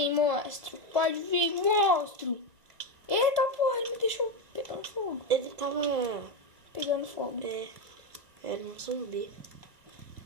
monstro. Pode vir, monstro. Eita, porra, ele me deixou pegando fogo. Ele tava pegando fogo. Era um zumbi.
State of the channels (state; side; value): late; left; 2.1 ms